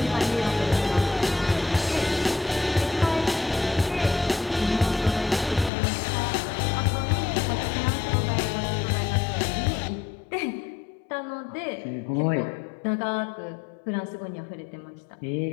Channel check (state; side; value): drops out; right; at 5.7 s